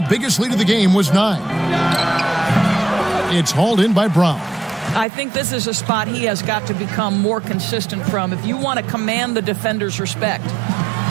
biggest lead of the game was 9. It's hauled in by Brown. I think this is a spot he has got to become more consistent from if you want to command the defender's respect.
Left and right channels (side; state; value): left; drops out; at 5.1 s